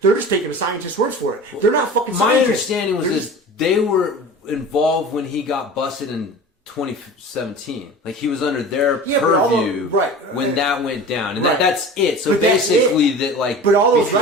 They're just taking the scientist's words for it. They're not fucking scientists. My understanding was they were involved when he got busted in 2017. Like, he was under their purview when that went down. And that's it. So basically that, like... But all those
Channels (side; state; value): both; normal; correlation 0.37